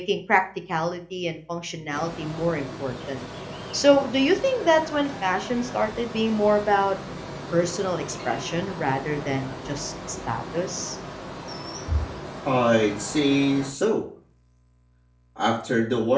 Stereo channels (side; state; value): both; identical; correlation 1.00